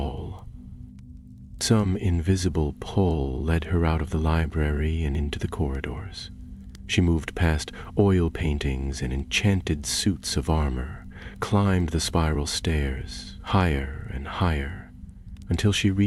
Some invisible pull led her out of the library and into the corridors. She moved past oil paintings and enchanted suits of armor, climbed the spiral stairs, higher and higher, until she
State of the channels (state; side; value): identical; both; correlation 1.00